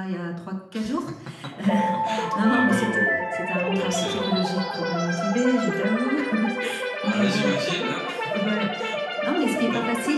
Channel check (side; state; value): both; identical; correlation 1.00